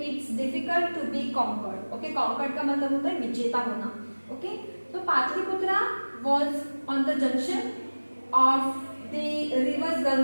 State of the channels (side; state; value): both; inverted; correlation -1.00